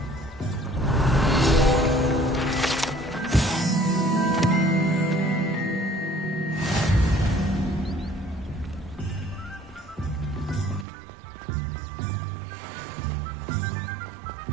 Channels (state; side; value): drops out; left; at 10.9 s